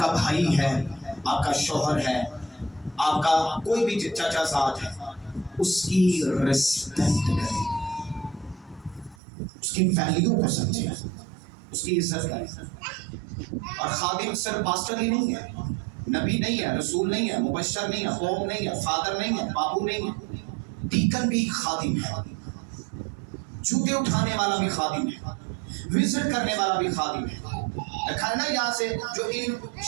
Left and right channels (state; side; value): drops out; left; at 9.2 s